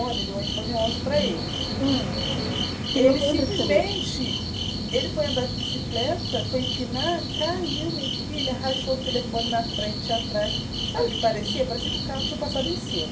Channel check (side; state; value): both; identical; correlation 1.00